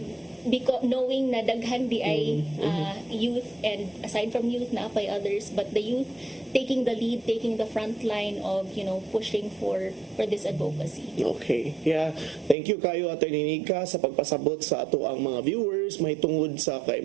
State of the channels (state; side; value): drops out; left; at 12.6 s